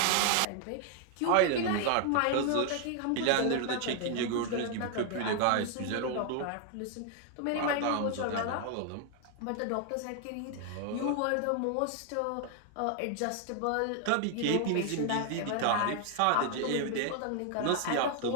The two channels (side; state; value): both; different; correlation 0.00